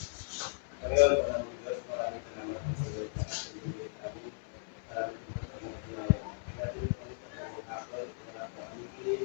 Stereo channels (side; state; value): right; silent; digital silence